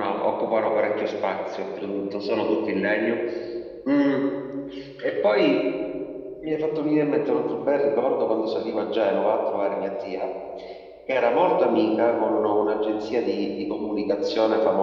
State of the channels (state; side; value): identical; both; correlation 1.00